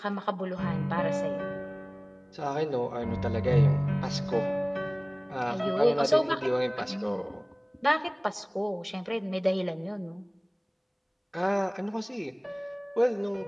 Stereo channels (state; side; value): identical; both; correlation 1.00